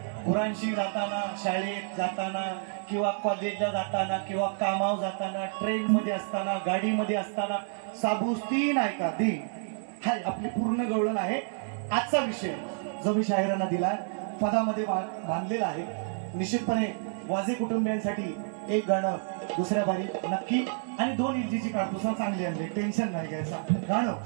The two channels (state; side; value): silent; left; 58 dB below the other